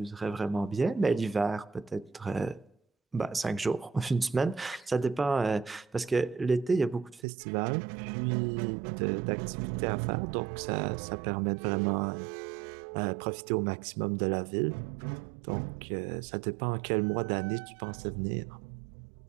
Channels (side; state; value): left; drops out; at 7.2 s